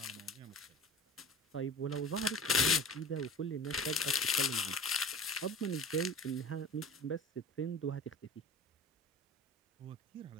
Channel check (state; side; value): normal; both; correlation 0.37